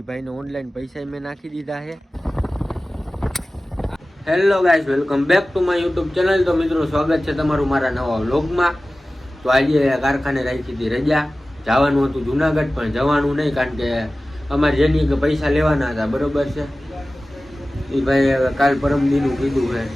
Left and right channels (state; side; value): normal; both; correlation 0.96